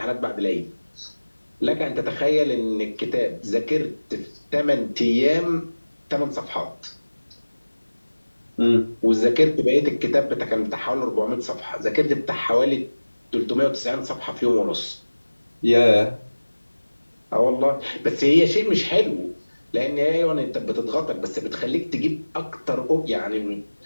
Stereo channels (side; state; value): both; inverted; correlation -1.00